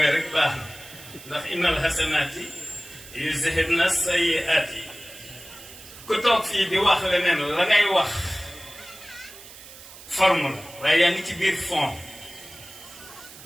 rek baax na ndax innal hasanaati yuzhibna sayyi'aati ku toog fii di wax leneen la ngay wax forme la waaye yaa ngi ci biir fond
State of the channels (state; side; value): noise; right; hiss, 17 dB below the sound